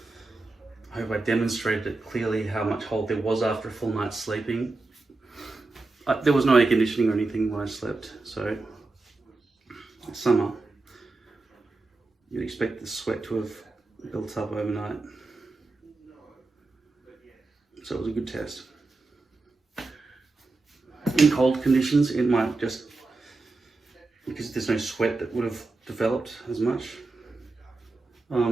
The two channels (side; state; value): left; quieter; 3.5 dB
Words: I hope I demonstrated it clearly how much hold there was after a full night's sleeping. There was no air conditioning or anything when I slept, so summer, you'd expect the sweat to have built up overnight. So it was a good test. In cold conditions, it might just, because there's no sweat that would have developed as much,